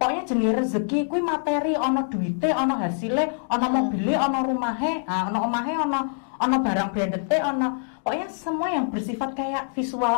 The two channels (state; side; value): silent; right; digital silence